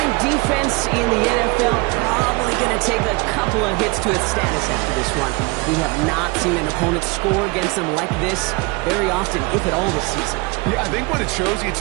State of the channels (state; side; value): quieter; left; 26.6 dB